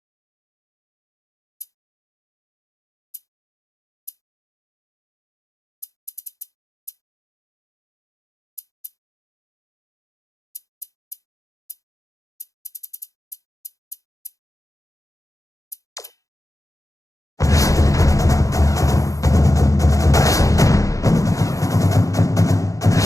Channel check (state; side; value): late; right; 0.16 ms